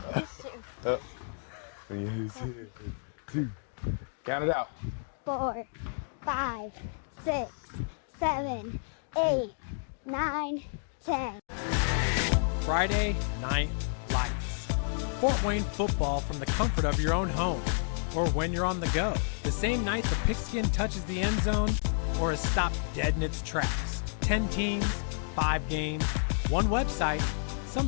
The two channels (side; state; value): right; silent; digital silence